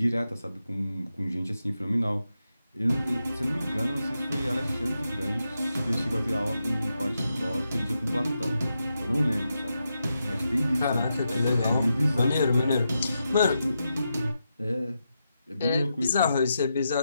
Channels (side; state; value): both; inverted; correlation -0.86